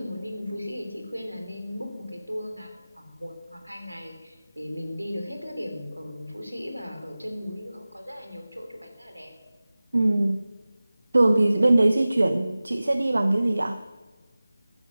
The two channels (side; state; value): both; inverted; correlation -0.97